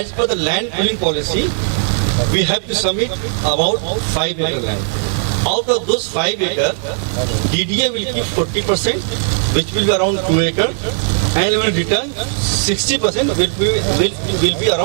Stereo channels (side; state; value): left; silent; digital silence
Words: per the land pooling policy, we have to submit about 5 acre land. Out of those 5 acre, DDA will keep 40%, which will be around 2 acre, and will return 60% will be